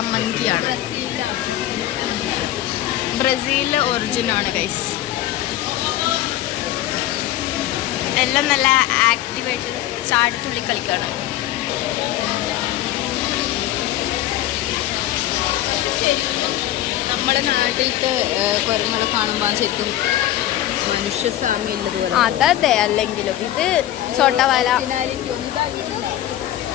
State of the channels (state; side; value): quieter; right; 13.6 dB